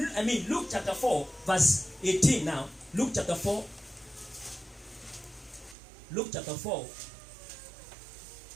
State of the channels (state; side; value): drops out; left; at 5.8 s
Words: Luke chapter 4, verse 18 now. Luke chapter 4. Luke chapter 4.